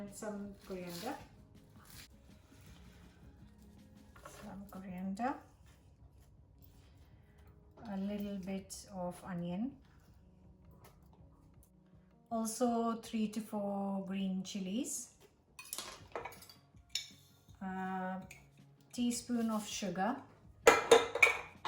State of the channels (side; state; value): both; identical; correlation 1.00